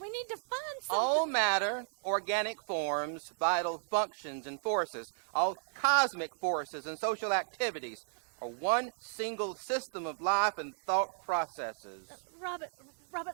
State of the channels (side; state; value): left; silent; digital silence